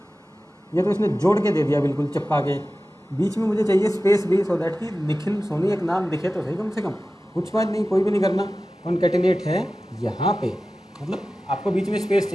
ये तो इसने जोड़ के दे दिया बिल्कुल चिपका के, बीच में मुझे चाहिए स्पेस भी, सो दैट कि निखिल सोनी एक नाम दिखे तो सही कम से कम। कुछ बात नहीं, कोई भी नहीं करना, कॉन्कैटिनेट है यहाँ पे, मतलब आपको बीच में स्पेस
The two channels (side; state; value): both; normal; correlation 0.95